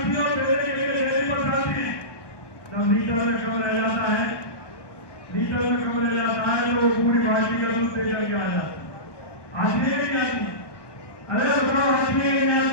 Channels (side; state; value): right; late; 1.2 ms